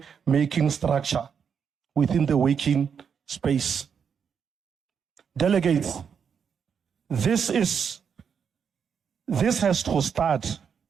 structure within the working space. Delegates, this has to start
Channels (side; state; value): left; quieter; 7.0 dB